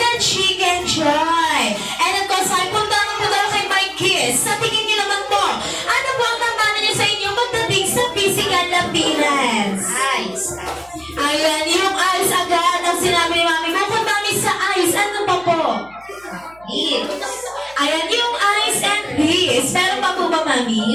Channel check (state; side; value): noise; left; hum, 29 dB below the sound